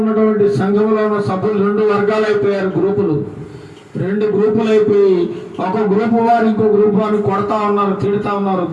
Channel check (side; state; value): both; identical; correlation 1.00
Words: సంఘంలో ఉన్న సభ్యులు 2 వర్గాలు అయిపోయారు, రెండు గ్రూపులు అయిపోయి ఒక గ్రూపు వారు ఇంకో గ్రూపు వారిని కొడతా ఉన్నారు, తిడుతా ఉన్నారు.